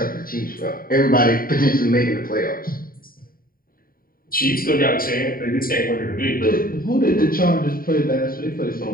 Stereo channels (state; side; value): late; right; 0.42 ms